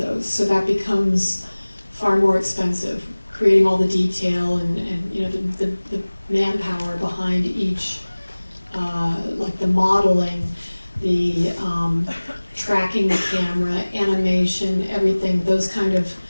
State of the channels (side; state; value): both; inverted; correlation -1.00